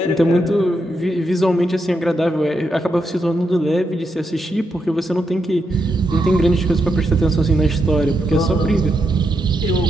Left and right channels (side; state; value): both; normal; correlation 0.82